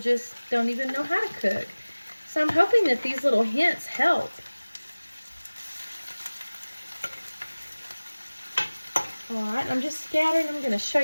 don't even know how to cook. So I'm hoping that these little hints help. All right, I'm just scattering. I'm going to show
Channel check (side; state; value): both; inverted; correlation -1.00